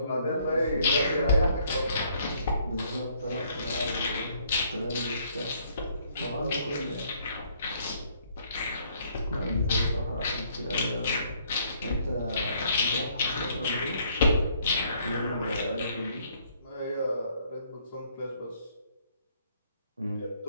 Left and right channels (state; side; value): inverted; both; correlation -0.65